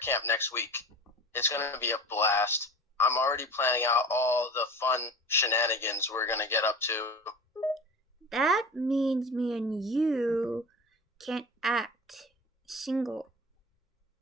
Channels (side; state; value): both; normal; correlation 0.35